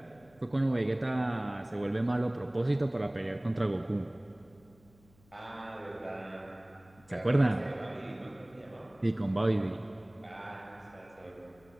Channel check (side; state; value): left; noise; hum, 29 dB below the sound